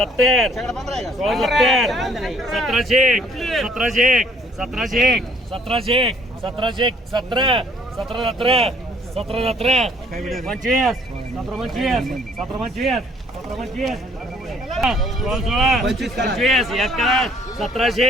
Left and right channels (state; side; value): normal; both; correlation 0.61